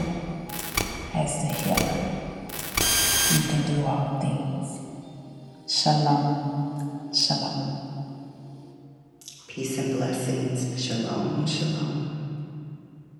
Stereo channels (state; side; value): identical; both; correlation 1.00